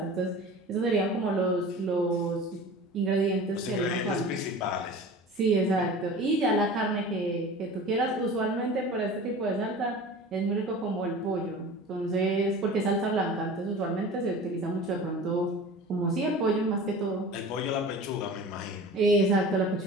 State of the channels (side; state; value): both; normal; correlation 0.38